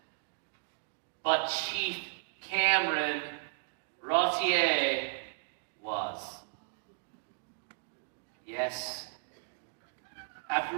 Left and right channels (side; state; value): left; silent; digital silence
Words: but Chief Cameron Rottier was. Yes. After